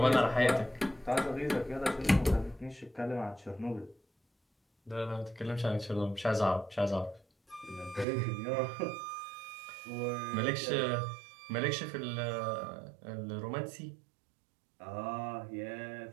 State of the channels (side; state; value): left; drops out; at 8.1 s